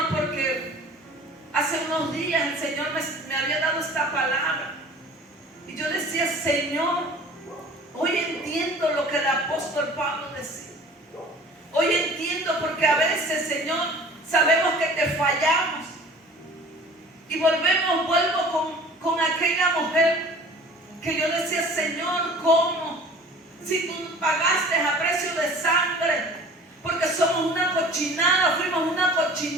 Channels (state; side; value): normal; both; correlation 0.45